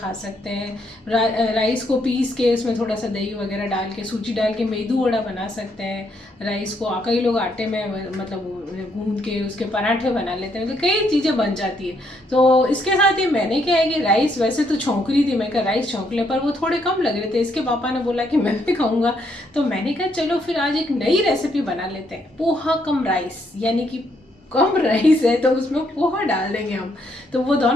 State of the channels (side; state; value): both; normal; correlation 0.73